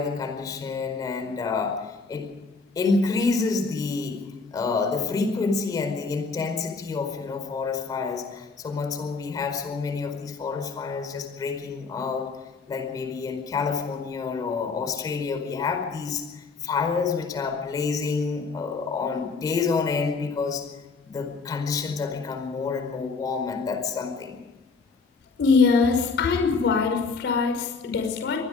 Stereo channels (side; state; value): right; quieter; 4.4 dB